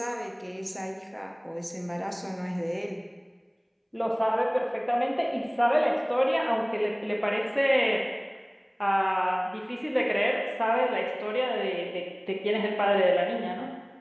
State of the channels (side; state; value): both; identical; correlation 1.00